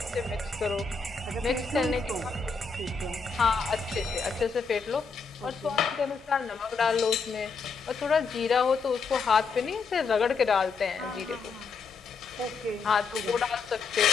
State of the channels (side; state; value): right; quieter; 4.8 dB